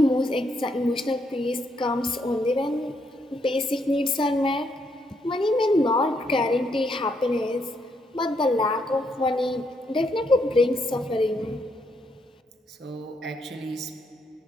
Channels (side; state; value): both; normal; correlation 0.76